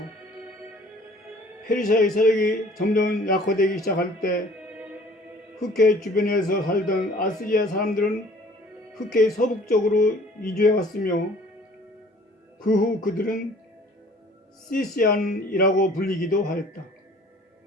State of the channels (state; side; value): normal; both; correlation 0.52